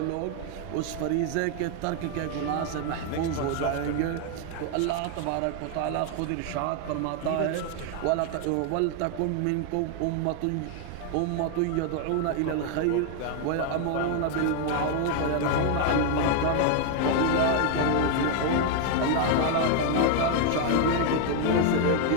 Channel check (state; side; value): different; both; correlation 0.00